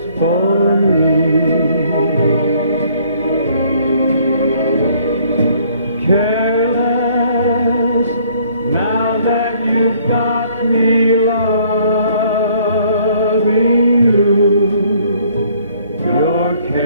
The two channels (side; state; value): both; inverted; correlation -0.62